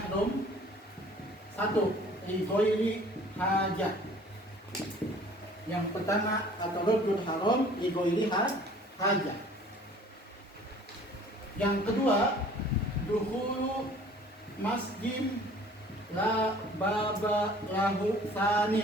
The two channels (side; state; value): both; normal; correlation 0.51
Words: Satu, igoiri hajat. Yang pertama, at-taraddud haram, igoiri hajat. Yang kedua, dukhulu masjid la baba lahu